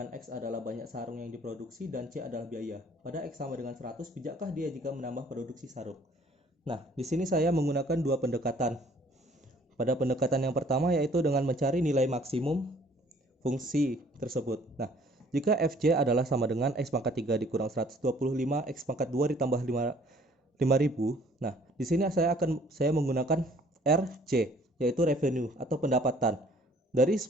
X adalah banyak sarung yang diproduksi dan C adalah biaya. Pada X sama dengan 100, bijakkah dia jika menambah produksi sarung? Nah, di sini saya menggunakan dua pendekatan. Pada pendekatan yang pertama yaitu dengan mencari nilai maksimum fungsi tersebut. Nah, jika FC adalah sama dengan X pangkat 3 dikurang 125 X pangkat 2 ditambah 5.000. Nah, di sini saya menggunakan RC, yaitu revenue atau pendapatan. Dari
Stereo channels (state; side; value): normal; both; correlation 0.57